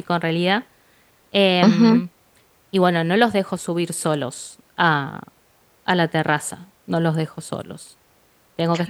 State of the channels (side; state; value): both; identical; correlation 1.00